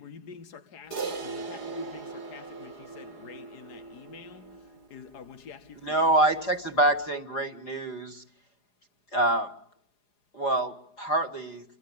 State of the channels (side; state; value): right; late; 4.8 ms